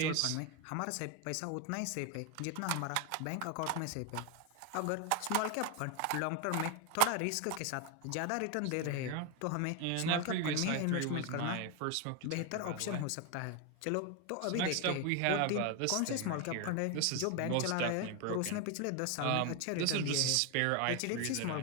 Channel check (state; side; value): different; both; correlation 0.01